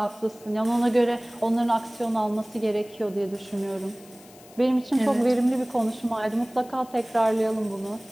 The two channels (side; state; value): left; noise; hiss, 24 dB below the sound